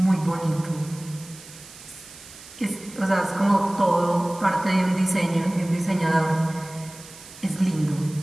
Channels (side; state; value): right; noise; hiss, 18 dB below the sound